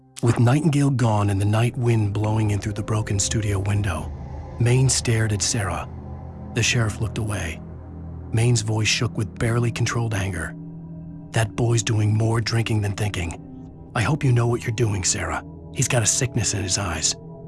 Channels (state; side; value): identical; both; correlation 1.00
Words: With Nightingale gone and the night wind blowing in through the broken studio window, Maine stared at Sarah. The sheriff looked away. Maine's voice shook with barely controlled anger. That boy's doing more drinking than thinking. I hope you know what you're doing, Sarah. He's got a sickness in his eyes.